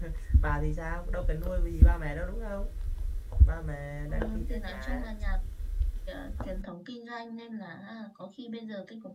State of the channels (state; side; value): identical; both; correlation 1.00